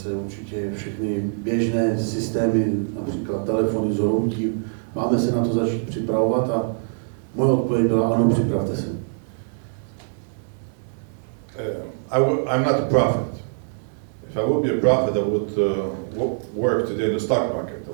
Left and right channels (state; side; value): silent; left; 62 dB below the other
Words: určitě všechny běžné systémy, například telefony zhroutí. Máme se na to začít připravovat a moje odpověď byla, ano, připravte se. I'm not a prophet. If I would be a prophet, I would work today in the stock market. I